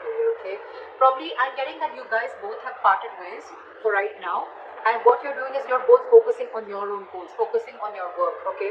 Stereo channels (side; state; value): both; identical; correlation 1.00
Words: career, okay? Probably I'm getting that you guys both have parted ways for right now, and what you're doing is you're both focusing on your own goals, focusing on your work,